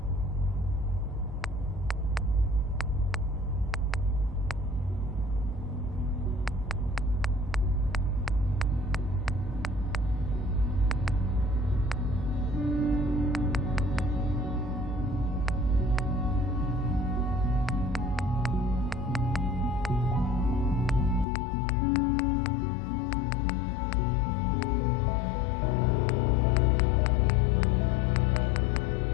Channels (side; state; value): right; drops out; at 21.2 s